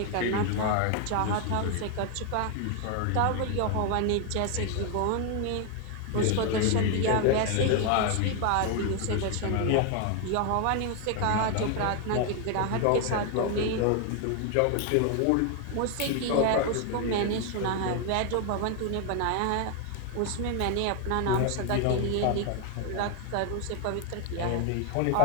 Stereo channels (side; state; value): both; different; correlation 0.01